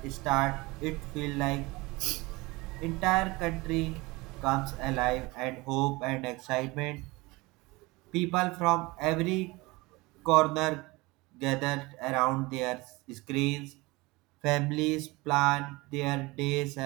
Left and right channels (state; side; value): quieter; left; 23.0 dB